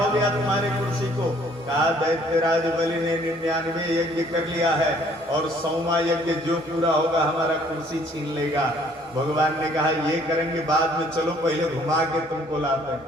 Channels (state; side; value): normal; both; correlation 0.60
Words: गया तुम्हारी कुर्सी को? कहा, दैत्यराज बलि ने 99 यज्ञ कर लिया है और 100वां यज्ञ जो पूरा होगा हमारा कुर्सी छीन लेगा। भगवान ने कहा, ये करेंगे बाद में, चलो पहले घुमा के तुमको लाते